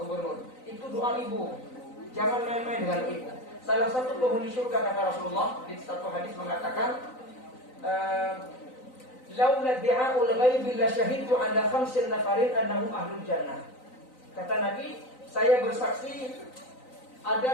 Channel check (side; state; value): right; late; 3.9 ms